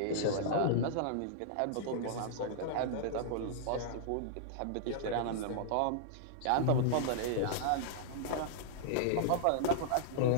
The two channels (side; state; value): both; different; correlation -0.02